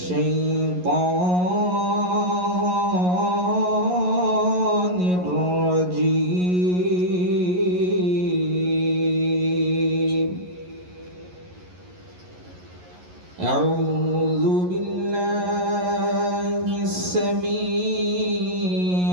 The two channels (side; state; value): left; late; 11 ms